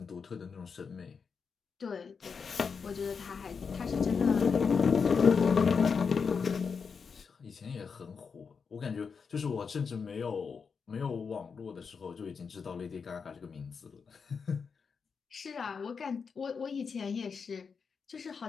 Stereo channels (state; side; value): quieter; right; 5.7 dB